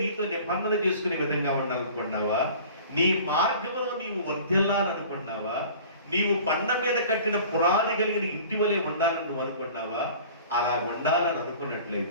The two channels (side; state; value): both; inverted; correlation -0.44